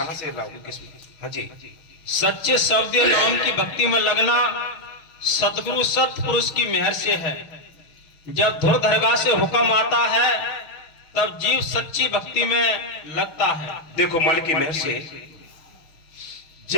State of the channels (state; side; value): late; right; 6.5 ms